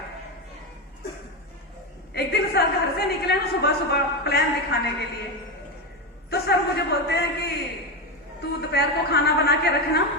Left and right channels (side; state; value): both; normal; correlation 0.13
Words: एक दिन सर घर से निकले ना सुबह सुबह प्लान दिखाने के लिए, तो सर मुझे बोलते हैं कि तू दोपहर को खाना बना के रखना,